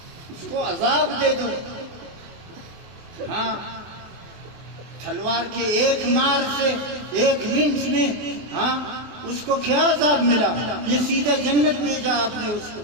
اس کو عذاب دے دو۔ ہاں تلوار کے ایک مار سے، ایک لنچ میں، ہاں اس کو کیا عذاب ملا؟ یہ سیدھا جنت بھیجا آپ نے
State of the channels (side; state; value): left; late; 24 ms